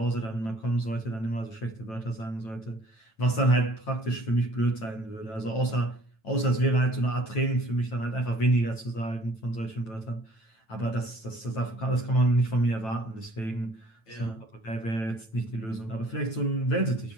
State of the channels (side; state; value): right; late; 9.1 ms